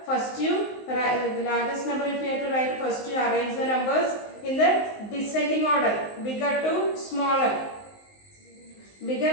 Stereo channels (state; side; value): late; right; 19 ms